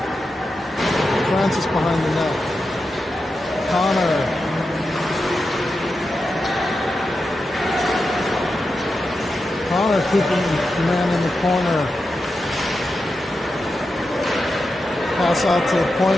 Francis behind the net. Connor. Connor keeping the man in the corner. Pass out to the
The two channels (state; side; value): normal; both; correlation 0.89